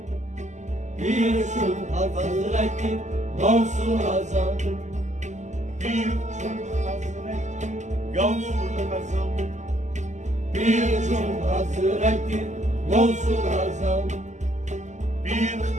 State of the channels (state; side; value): late; left; 0.34 ms